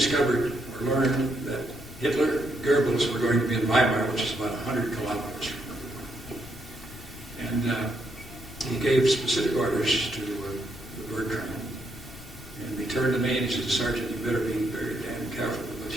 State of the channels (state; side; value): noise; left; rumble, 17 dB below the sound